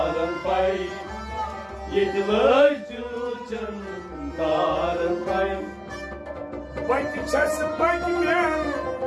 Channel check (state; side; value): identical; both; correlation 1.00